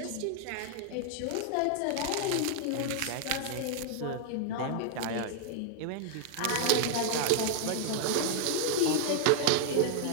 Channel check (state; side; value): different; both; correlation -0.01